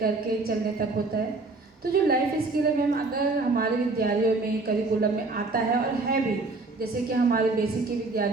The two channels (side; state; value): left; quieter; 3.5 dB